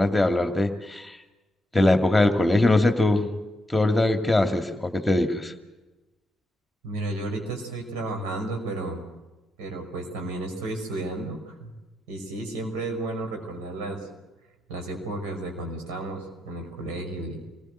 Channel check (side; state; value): both; normal; correlation 0.84